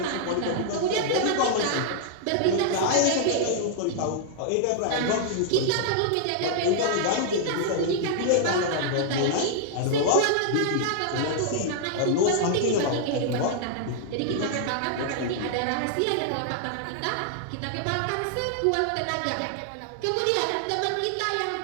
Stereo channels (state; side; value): different; both; correlation -0.01